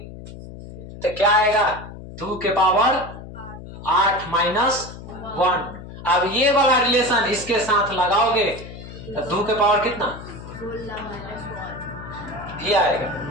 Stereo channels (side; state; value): left; noise; hum, 13 dB below the sound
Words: तो क्या आएगा, 2 के पावर 8 -1। अब ये वाला रिलेशन इसके साथ लगाओगे तो 2 के पावर कितना, ये आएगा,